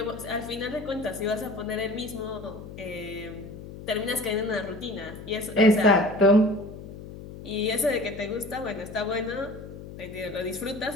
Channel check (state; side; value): noise; left; hum, 13 dB below the sound